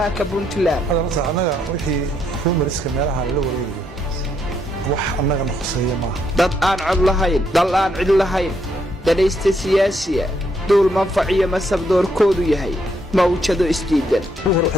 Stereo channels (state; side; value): normal; both; correlation 0.74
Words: Puntland anaga wixii rumoriska meelaha la wareegay wax anaga noqosay ma dad aan cod lahayn dal aan cid lahayn dadaysta siyaasiya dul manfaciyo masabdoorkoodu yahay mawjado isdiidan hore